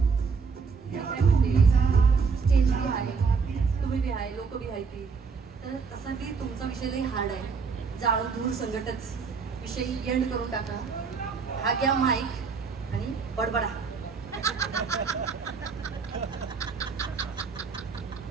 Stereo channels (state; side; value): quieter; left; 5.3 dB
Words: स्टेज बी आहे, तुम्ही बी आहे, लोक बी आहे ती, तर तसा बी तुमचा विषय लई हार्ड आहे. जाळ धूर संकटच विषय एंड करून टाका. हा घ्या माईक आणि बडबडा.